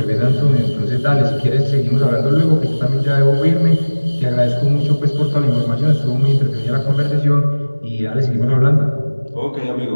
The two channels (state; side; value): inverted; both; correlation -1.00